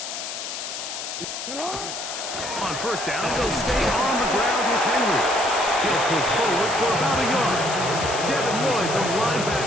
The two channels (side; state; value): left; noise; hiss, 7 dB below the sound